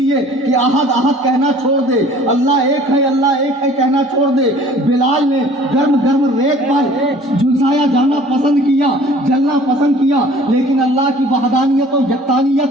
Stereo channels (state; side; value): normal; both; correlation 0.50